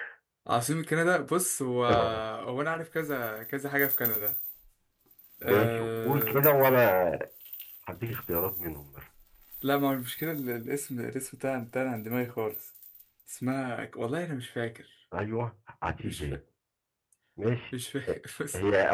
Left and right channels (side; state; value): both; identical; correlation 1.00